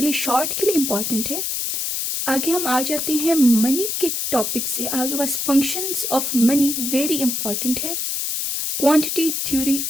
लिए शॉर्ट के लिए इम्पॉर्टेंट है. आगे हम आ जाते हैं मनी के टॉपिक से. आगे बस functions of money very important है. Quantity theory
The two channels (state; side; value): noise; left; hiss, 1 dB below the sound